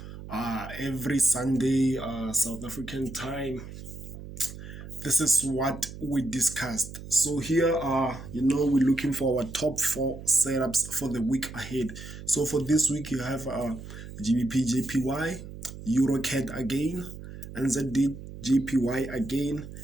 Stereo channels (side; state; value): right; noise; hum, 12 dB below the sound